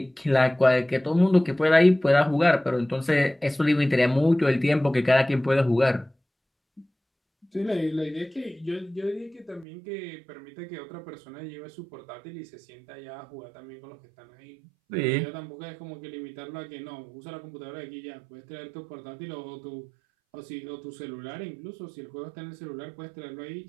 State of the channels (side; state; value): left; drops out; at 9.7 s